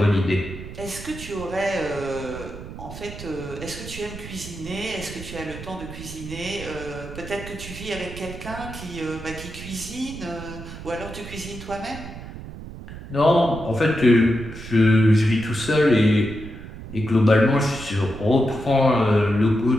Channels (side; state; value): right; noise; rumble, 12 dB below the sound